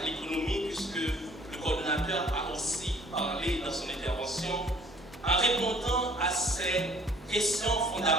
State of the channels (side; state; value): both; normal; correlation 0.56